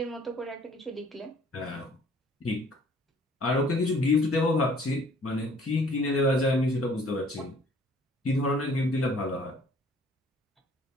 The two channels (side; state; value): both; normal; correlation 0.57